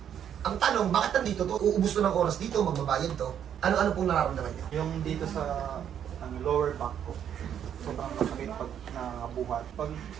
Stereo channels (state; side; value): quieter; left; 9.2 dB